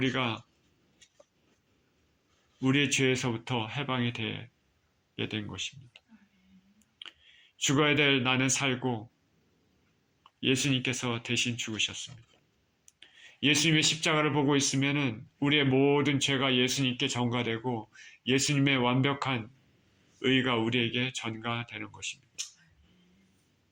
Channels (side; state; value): both; identical; correlation 1.00